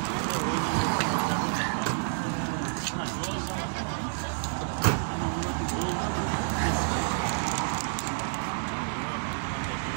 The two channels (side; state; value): left; silent; digital silence